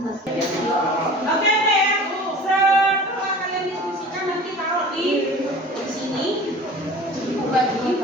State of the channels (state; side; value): normal; both; correlation 0.41